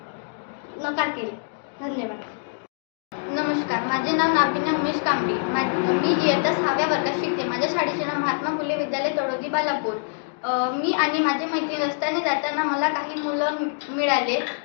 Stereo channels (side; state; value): right; silent; digital silence